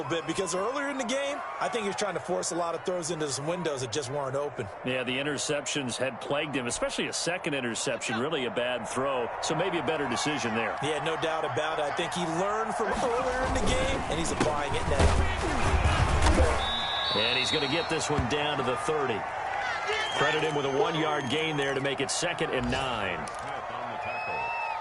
bit because earlier in the game, I think he was trying to force a lot of throws into some windows that just weren't open. Yeah, the interceptions had plagued him, especially a second interception, really a bad throw. So maybe a better decision there. Yeah, no doubt about it. I think he learned from earlier in the game, and he's applying it now. And he's going to get this one down to the 30. Credit him with a 1-yard gain there to make it 2nd and 9. Smith on the tackle.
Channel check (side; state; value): both; identical; correlation 1.00